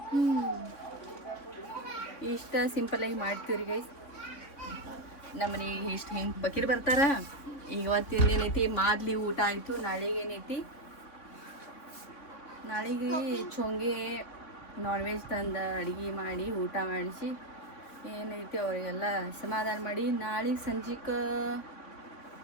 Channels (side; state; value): right; late; 3.6 ms